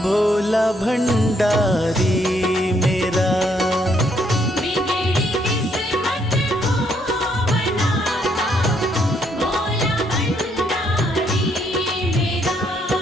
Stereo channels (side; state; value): both; normal; correlation 0.72